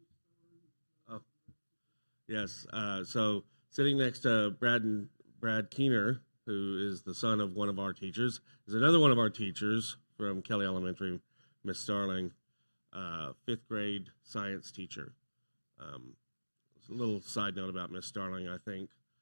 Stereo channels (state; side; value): inverted; both; correlation -1.00